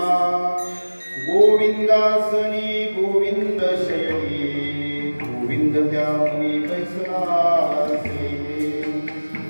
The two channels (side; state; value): both; inverted; correlation -1.00